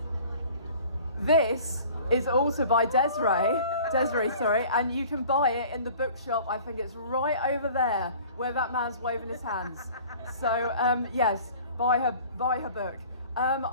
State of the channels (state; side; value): inverted; both; correlation -0.47